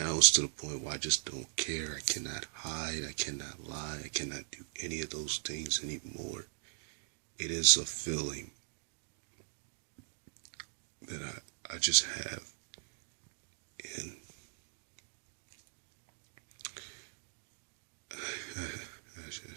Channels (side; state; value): left; silent; digital silence